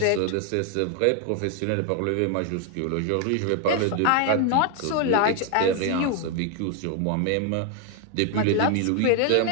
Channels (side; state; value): both; different; correlation 0.00